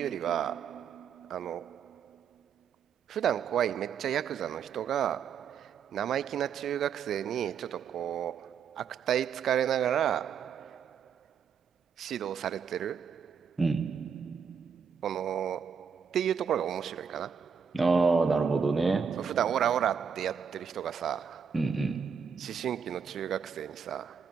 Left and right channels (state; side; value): quieter; left; 6.8 dB